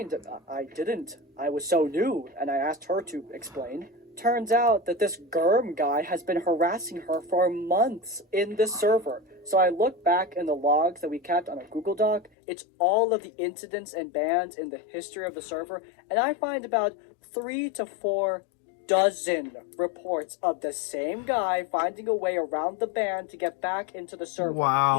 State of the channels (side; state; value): right; drops out; at 12.3 s